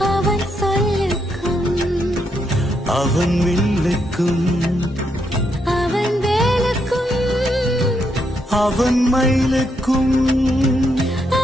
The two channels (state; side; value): normal; both; correlation 0.78